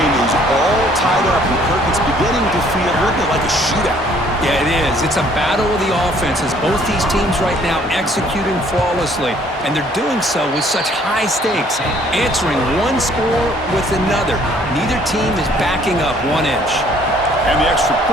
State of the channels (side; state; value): both; normal; correlation 0.60